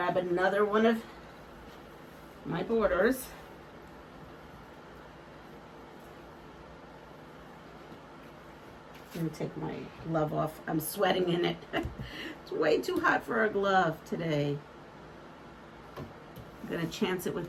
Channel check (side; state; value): both; identical; correlation 1.00